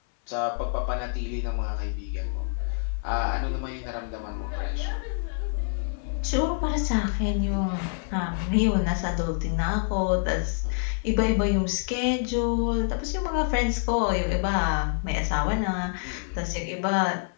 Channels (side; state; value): right; silent; 58 dB below the other